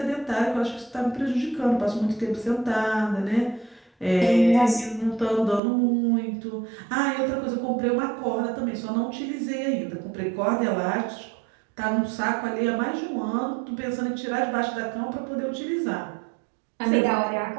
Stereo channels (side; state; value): left; drops out; at 5.6 s